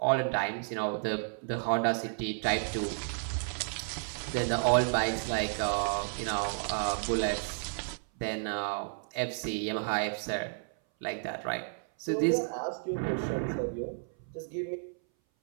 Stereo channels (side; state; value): left; silent; 56 dB below the other